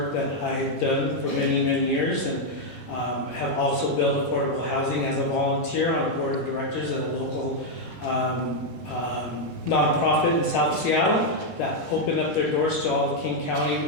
that I've done for many, many years, and have also built affordable housing as a volunteer on a board of directors at a local nonprofit in South Seattle that opened up their doors to all the King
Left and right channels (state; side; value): normal; both; correlation 0.00